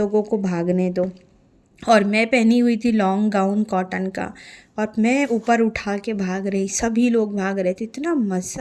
को भागने दो। और मैं पहनी हुई थी लॉन्ग गाउन कॉटन का, और मैं ऊपर उठा के भाग रही, सभी लोग भाग रहे थे। इतना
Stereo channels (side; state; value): both; identical; correlation 1.00